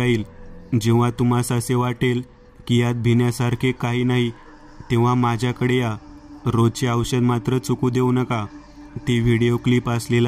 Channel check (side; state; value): both; identical; correlation 1.00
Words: जेव्हा तुम्हास असे वाटेल की यात भिण्यासारखे काही नाही, तेव्हा माझ्याकडे या. रोजचे औषध मात्र चुकू देऊ नका. ती व्हिडिओ क्लिप